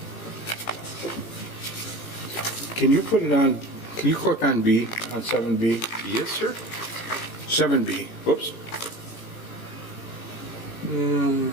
Can you put it on, can you click on B, on 7B? Yes, sir. 7B, whoops.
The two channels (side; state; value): right; late; 18 ms